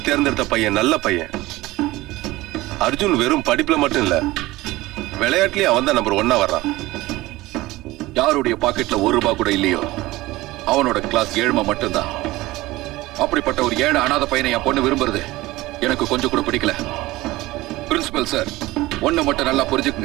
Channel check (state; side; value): quieter; left; 18.8 dB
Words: தேர்ந்தெடுத்த பையன் நல்ல பையன். அர்ஜுன் வெறும் படிப்புல மட்டும் இல்ல, விளையாட்டுலயும் அவன் தான் நம்பர் 1 வர்றான். யாருடைய பாக்கெட்ல ₹1 கூட இல்லையோ அவனோட கிளாஸ் 7 மட்டும்தான். அப்படிப்பட்ட ஒரு 7 அனாதை பையனை என் பொண்ணு விரும்புறது எனக்கு கொஞ்சம் கூட பிடிக்கல. பிரின்சிபல் சார், ஒண்ணு மட்டும் நல்லா